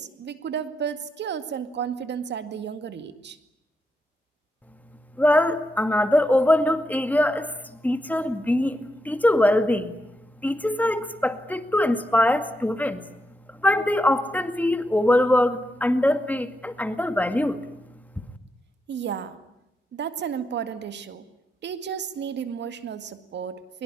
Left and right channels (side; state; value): both; normal; correlation 0.83